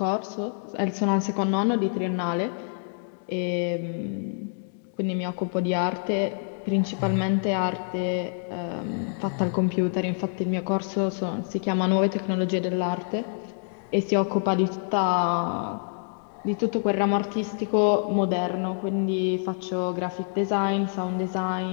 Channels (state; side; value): silent; right; digital silence